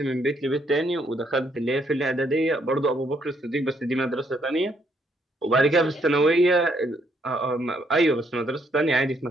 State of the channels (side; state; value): both; normal; correlation 0.71